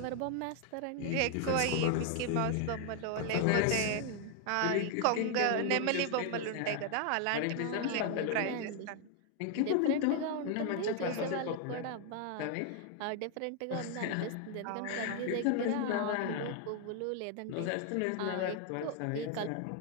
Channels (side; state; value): both; different; correlation 0.00